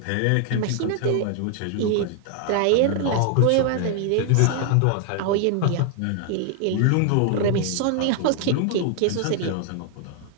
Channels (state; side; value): different; both; correlation 0.00